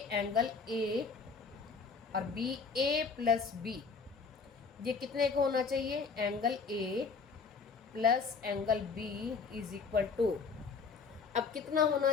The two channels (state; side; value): quieter; right; 5.1 dB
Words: एंगल ए और बी, ए प्लस बी, ये कितने का होना चाहिए? Angle A plus angle B is equal to, अब कितना होना